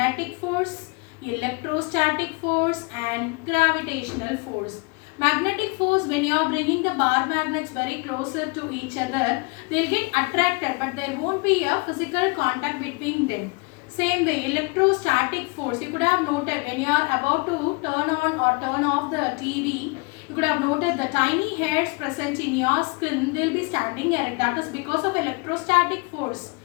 force, electrostatic force and gravitational force. Magnetic force, when you are bringing the bar magnets very closer to each other, they will get attracted but there won't be a physical contact between them. Same way, electrostatic force, you could have noted when you are about to turn on or turn off the TV, you could have noted the tiny hairs present in your skin, they will be standing erect. That is because of electrostatic force.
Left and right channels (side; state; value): right; quieter; 30.2 dB